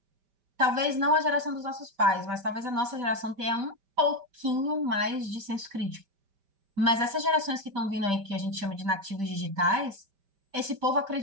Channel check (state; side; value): late; left; 5.1 ms